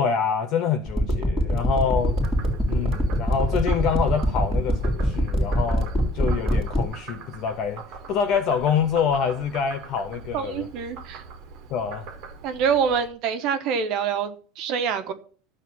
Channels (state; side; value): normal; both; correlation 0.50